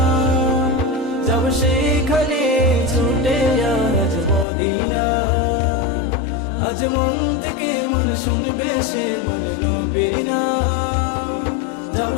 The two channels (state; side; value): drops out; right; at 4.5 s